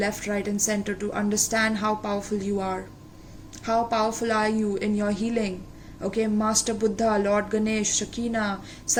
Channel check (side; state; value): both; identical; correlation 1.00